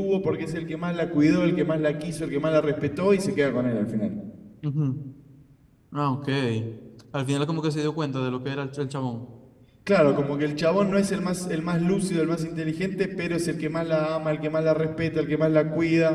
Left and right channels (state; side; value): identical; both; correlation 1.00